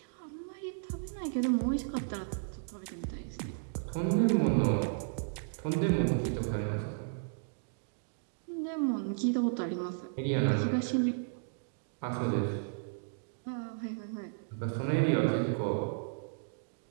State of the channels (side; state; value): left; silent; digital silence